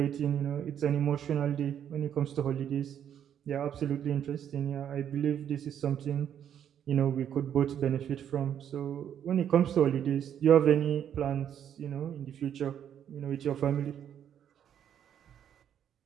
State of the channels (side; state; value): left; quieter; 9.4 dB